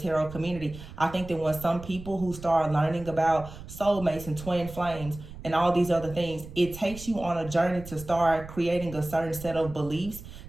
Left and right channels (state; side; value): noise; right; rumble, 14 dB below the sound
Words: community. I think that when some people who start learning about soulmates and twin flames and all these other things, it takes you on a journey to start creating a certain set of beliefs